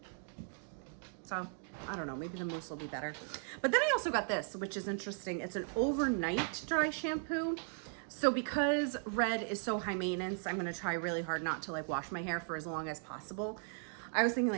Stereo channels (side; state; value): left; silent; 53 dB below the other